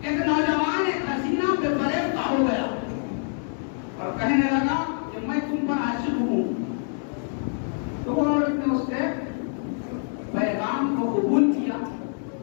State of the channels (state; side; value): silent; right; digital silence